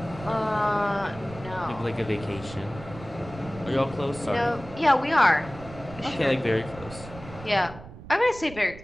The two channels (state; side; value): noise; right; rumble, 15 dB below the sound